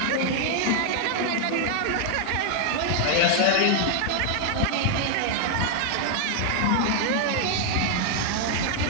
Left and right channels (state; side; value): different; both; correlation 0.00